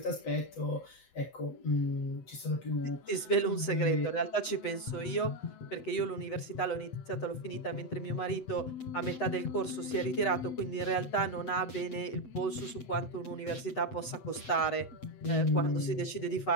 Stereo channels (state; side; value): late; right; 7.9 ms